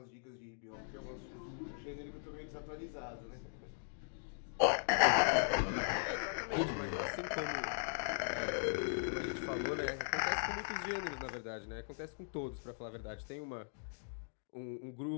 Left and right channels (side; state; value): right; silent; digital silence